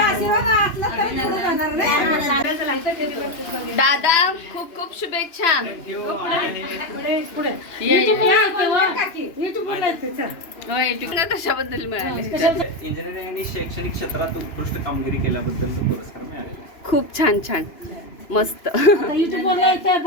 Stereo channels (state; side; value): late; right; 2.9 ms